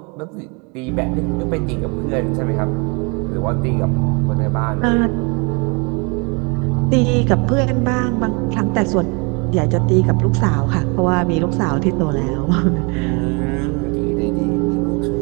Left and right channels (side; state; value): left; quieter; 31.3 dB